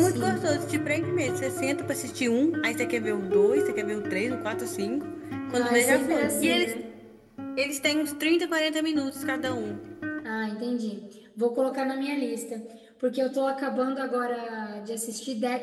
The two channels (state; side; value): identical; both; correlation 1.00